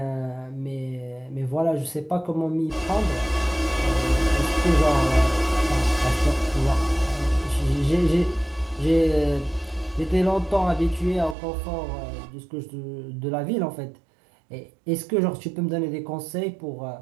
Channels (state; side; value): drops out; left; at 11.4 s